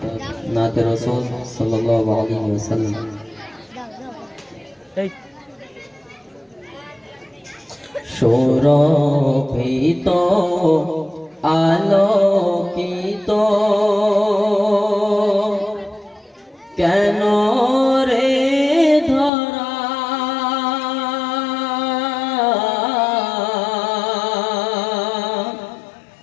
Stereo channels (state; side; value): drops out; right; at 19.3 s